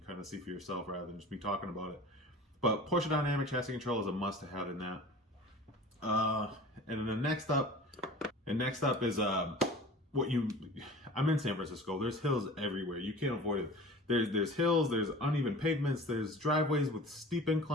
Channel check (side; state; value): both; normal; correlation 0.40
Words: kind of see for yourself rather than just me talking about it. But Porsche Dynamic Chassis Control is a must-have in that. And then the next up is I'm in San Francisco. There's hills everywhere. You can't avoid it. There's hills, there's uneven pavements, there's driveways with steep